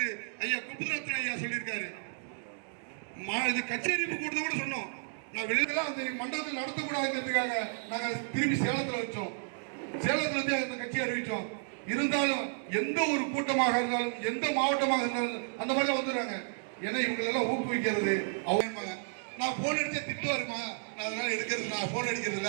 ஐயா குப்புரத்ன ஐயா சொல்லியிருக்காரு. இது கச்சேரி கூட்டத்தை கூட சொன்னோம். நான் வெளியில அந்த மண்டபத்தில் நடத்தக்கூடாதுங்கிறதுக்காக நாங்க திரும்பி சேலத்துல வச்சோம். சேலத்துல இருந்து அந்த கட்சி அறிவிச்சோம். இருந்தாலும் எந்த ஒரு கூட்டமாக இருந்தாலும் எந்த மாவட்டமாக இருந்தாலும் அந்த மாதிரி வந்துடுறாங்க. ஏன்னா இவங்களெல்லாம் ஊக்குவிக்கிறது அவங்க. நான் போன் அடிச்சா திட்டுவாருமா, நான் அதனால எடுக்கிறது, நான் போன் அடிக்கிறது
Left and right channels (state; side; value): silent; left; digital silence